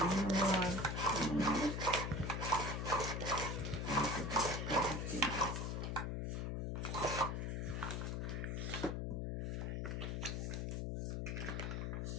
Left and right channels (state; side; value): noise; left; hum, 1 dB below the sound